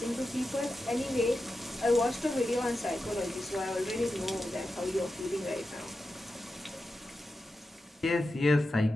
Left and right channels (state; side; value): normal; both; correlation 0.91